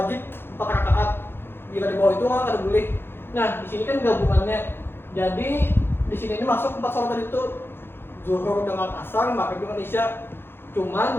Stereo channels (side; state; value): right; late; 0.11 ms